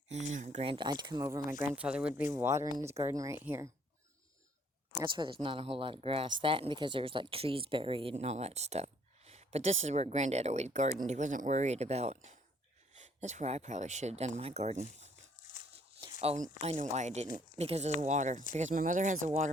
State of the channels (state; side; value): normal; both; correlation 0.63